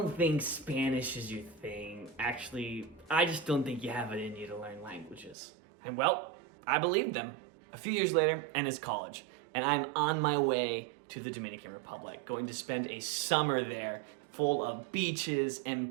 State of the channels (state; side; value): drops out; left; at 5.4 s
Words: think Spanish is your thing. Actually, I just don't think you have it in you to learn languages. And well, I believed them. A few years later, and it's college, and I'm on my way to the Dominican Republic, going to spend a summer there full of beaches and